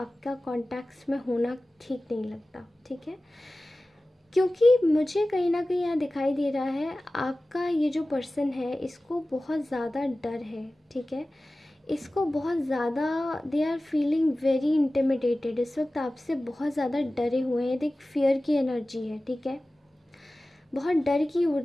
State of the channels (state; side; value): normal; both; correlation 0.96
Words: कॉन्टैक्ट्स में होना ठीक नहीं लगता। ठीक है, क्योंकि मुझे कहीं ना कहीं यहाँ दिखाई दे रहा है आपका ये जो पर्सन है इसको बहुत ज़्यादा डर है। ठीक है, इसको बहुत ज़्यादा they are feeling very intimidated, इस वक्त आपसे बहुत ज़्यादा डरे हुए हैं। एक फियर की एनर्जी है। ठीक है, बहुत डर की